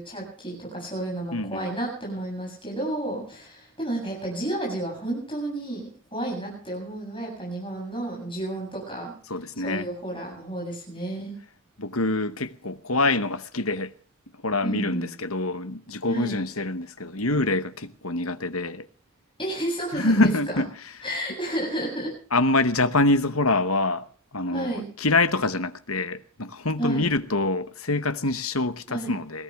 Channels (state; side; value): normal; both; correlation 0.13